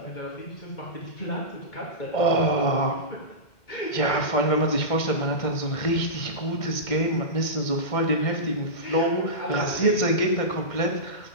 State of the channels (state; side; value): late; right; 2.1 ms